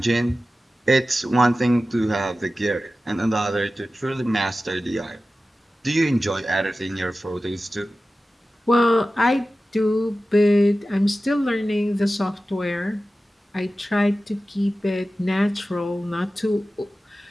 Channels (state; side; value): normal; both; correlation 0.95